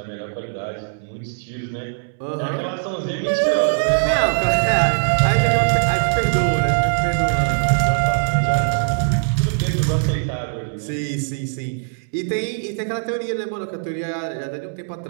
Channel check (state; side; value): silent; left; digital silence